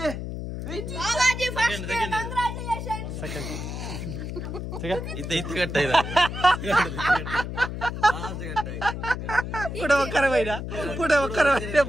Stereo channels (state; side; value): noise; left; hum, 6 dB below the sound